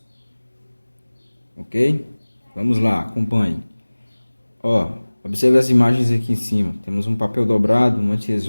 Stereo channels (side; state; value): both; inverted; correlation -1.00